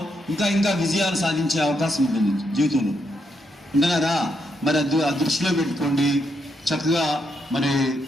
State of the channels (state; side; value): normal; both; correlation 0.79